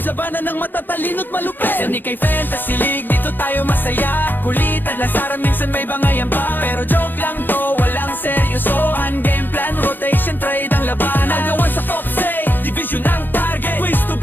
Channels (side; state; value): right; late; 0.093 ms